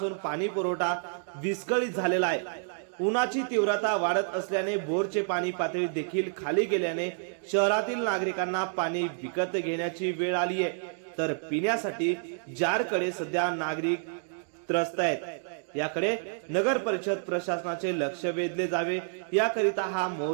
पाणी पुरवठा विस्कळीत झालेला आहे। उन्हाची तीव्रता वाढत असल्याने बोरचे पाणी पातळी देखील खाली गेल्याने शहरातील नागरिकांना पाणी विकत घेण्याची वेळ आली आहे, तर पिण्यासाठी जारकडे सध्या नागरिक त्रस्त आहेत। याकडे नगर परिषद प्रशासनाचे लक्ष वेधले जावे याकरिता हा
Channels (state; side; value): silent; left; digital silence